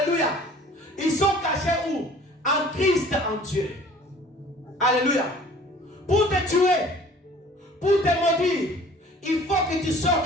ils sont cachés où? En Christ, en Dieu. Alléluia. Pour te tuer, pour te maudire, il faut que tu sortes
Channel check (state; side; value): normal; both; correlation 0.50